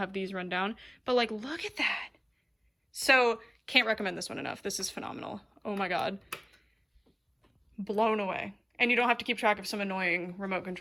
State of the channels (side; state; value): both; identical; correlation 1.00